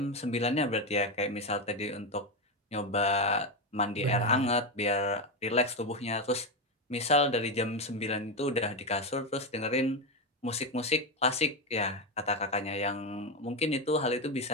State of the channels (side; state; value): both; normal; correlation 0.11